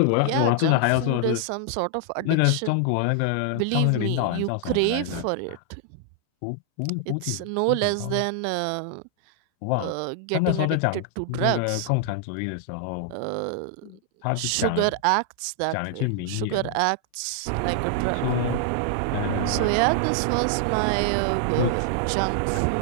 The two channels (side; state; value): both; different; correlation 0.00